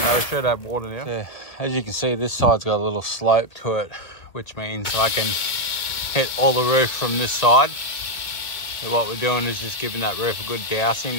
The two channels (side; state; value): right; late; 1.5 ms